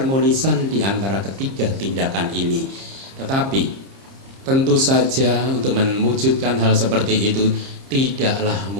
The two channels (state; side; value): late; left; 30 ms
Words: di antara ketiga tindakan ini. Tetapi tentu saja untuk mewujudkan hal seperti itu tidaklah